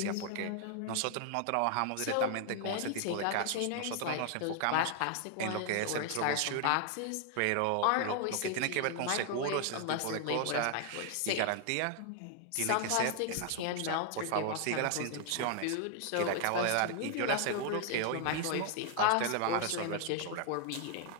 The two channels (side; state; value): both; different; correlation 0.00